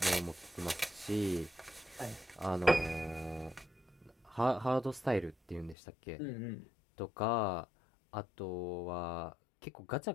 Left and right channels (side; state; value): right; drops out; at 5.8 s